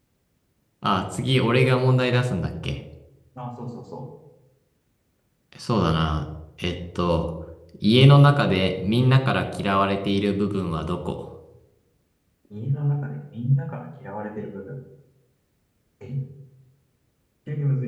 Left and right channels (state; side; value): identical; both; correlation 1.00